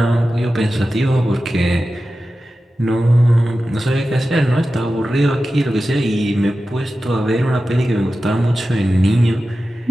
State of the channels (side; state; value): both; normal; correlation 0.93